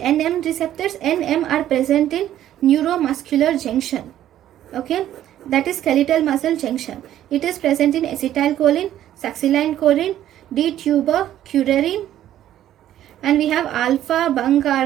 receptors? NM are present in neuromuscular junction. Okay, that is skeletal muscle junction. It is present in acetylcholine, succinylcholine, D-tubercularine, and we have alpha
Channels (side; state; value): left; quieter; 12.0 dB